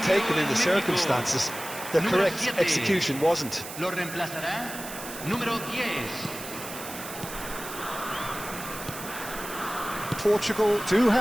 in the circumstances. The correct execution wasn't. Lo reemplazará número 10. Portugal do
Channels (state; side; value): noise; right; hiss, 11 dB below the sound